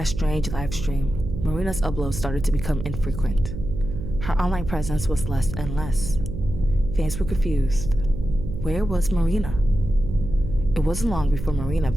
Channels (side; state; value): right; noise; hum, 7 dB below the sound